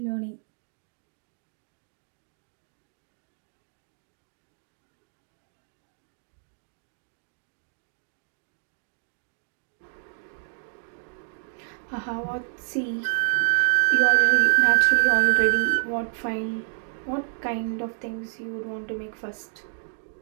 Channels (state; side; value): silent; left; digital silence